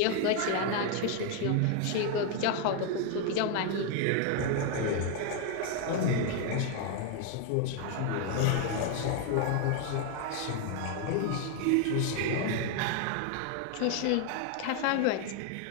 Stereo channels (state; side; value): different; both; correlation 0.01